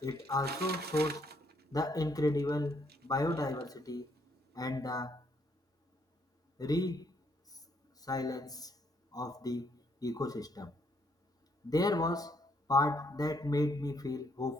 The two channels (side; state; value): both; normal; correlation 0.71